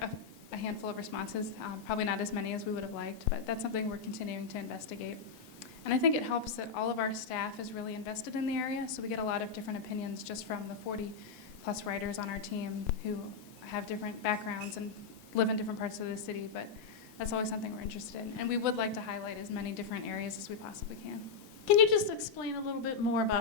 a handful of responses, probably not as many as we would have liked, but that's something we're continuing to investigate. And I think it helps that all of our staff is really invested in the area, so we get a lot of different opinions just from the 40+ writers on our team who have different backgrounds and live in different parts of the city, but that's always something we're interested in. And we would like to highlight as many different areas as we possibly can. Can you just explain a little bit more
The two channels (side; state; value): right; quieter; 5.3 dB